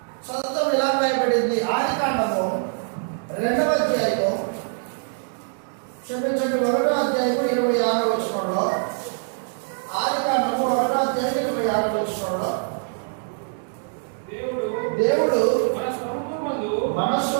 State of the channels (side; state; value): left; silent; digital silence